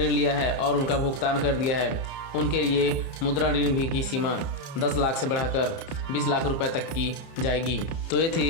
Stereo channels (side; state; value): right; late; 30 ms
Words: लिया है और उनका भुगतान कर दिया है, उनके लिए मुद्रा ऋण भी की सीमा 10 लाख से बढ़ाकर 20 लाख रुपए तक की जाएगी। तो ये